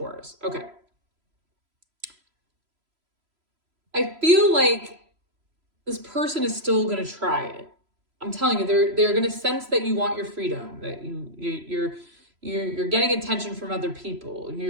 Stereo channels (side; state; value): left; late; 3.0 ms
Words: Okay. I feel like this person is still going to try it. I'm telling you, they're going to sense that you want your freedom, that you're getting attention from other people.